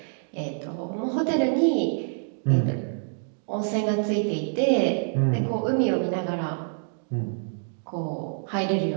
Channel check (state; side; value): silent; left; digital silence